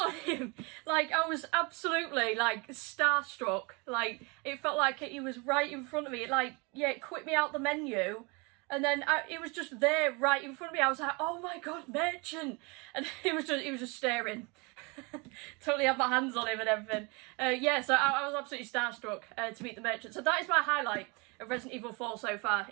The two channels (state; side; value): quieter; left; 29.1 dB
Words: on him. Like, I was absolutely, like, starstruck. Like, it felt like he was right in front of me. Like, yeah, it quit me out the menu. And then it was just there right in front of me. I was like, oh my God, Merchant. And he was just staring. Totally had my hands on him and everything. Yeah, so I was absolutely starstruck to meet the Merchant. So that is my highlight of Resident Evil 4 so far